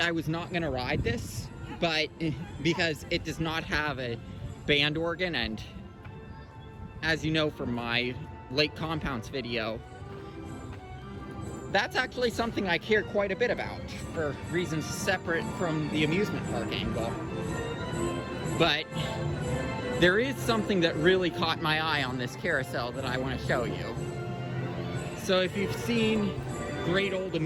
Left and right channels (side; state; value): both; identical; correlation 1.00